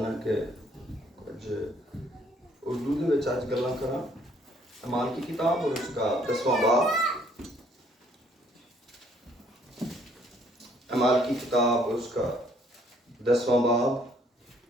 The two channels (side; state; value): both; normal; correlation 0.64